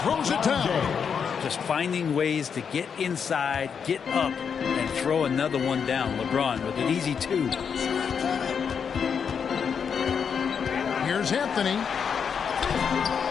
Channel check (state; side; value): quieter; right; 6.8 dB